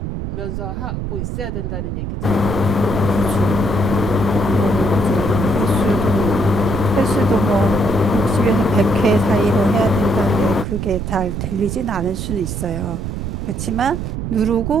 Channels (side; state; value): right; noise; rumble, 4 dB below the sound